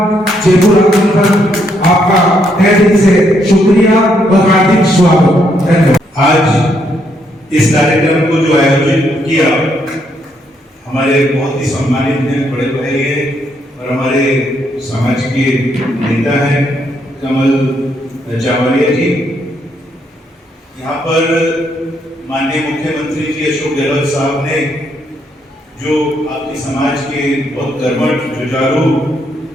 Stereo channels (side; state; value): both; normal; correlation 0.74